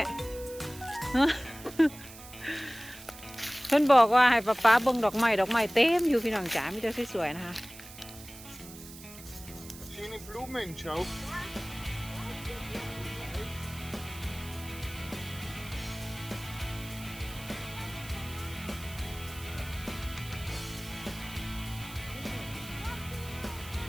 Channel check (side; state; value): right; noise; hiss, 16 dB below the sound